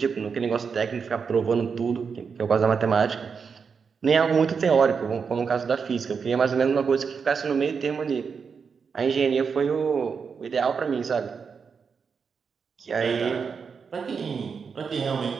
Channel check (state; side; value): quieter; left; 5.9 dB